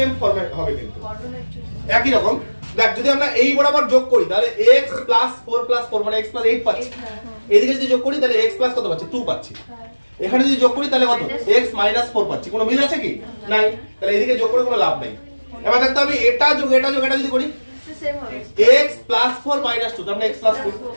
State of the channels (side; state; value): both; inverted; correlation -1.00